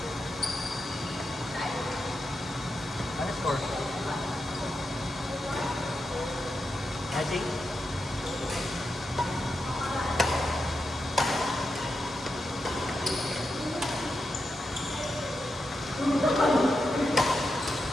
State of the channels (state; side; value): normal; both; correlation 0.87